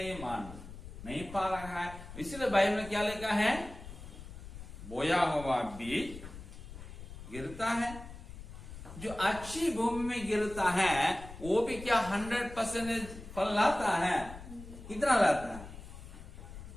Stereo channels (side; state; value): left; noise; rumble, 13 dB below the sound